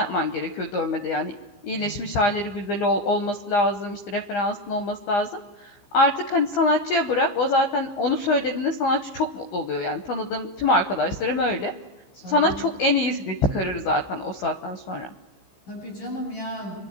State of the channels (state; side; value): late; right; 15 ms